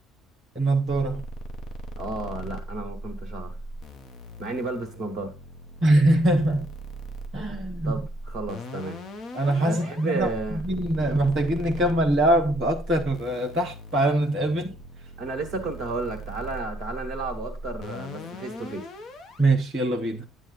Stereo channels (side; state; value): both; normal; correlation 0.71